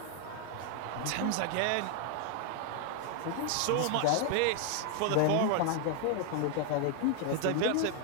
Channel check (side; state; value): both; different; correlation 0.00